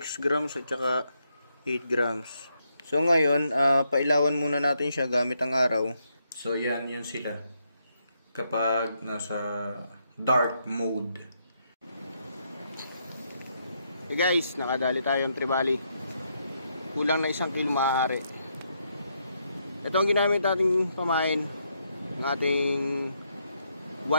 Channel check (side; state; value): both; inverted; correlation -0.78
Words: grams at saka 8 grams. So ngayon, pailawan muna natin siya gamit ang araw. So yan, yun sila. Kapag nasa dark mode. Hey guys, nakadali tayong tribali. Kulang na 1 kilo maaari. Ito ang ginamit nating pamain ng ating